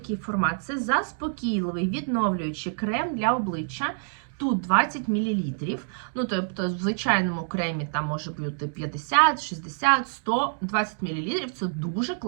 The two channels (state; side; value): silent; left; digital silence